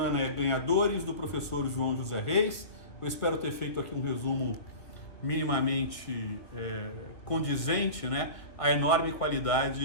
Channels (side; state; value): right; late; 1.8 ms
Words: é Ganhadores, do professor João José Reis. Eu espero ter feito aqui um resumo minimamente condizente, né, à enorme